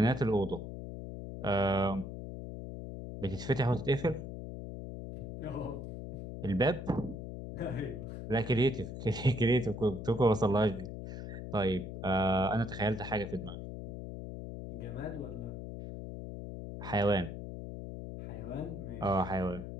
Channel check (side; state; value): left; noise; hum, 8 dB below the sound